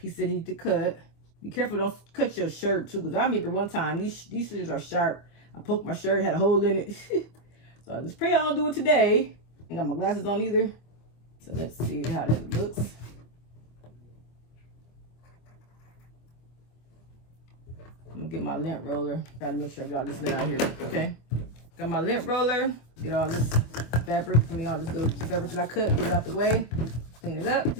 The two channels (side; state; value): right; late; 25 ms